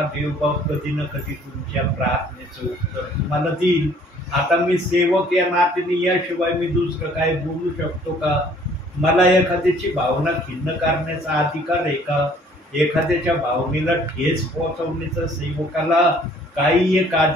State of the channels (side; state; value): both; normal; correlation 0.57